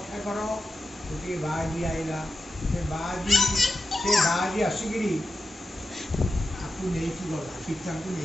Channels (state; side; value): normal; both; correlation 0.90